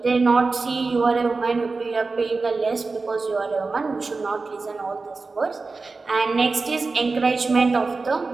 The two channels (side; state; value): left; quieter; 3.9 dB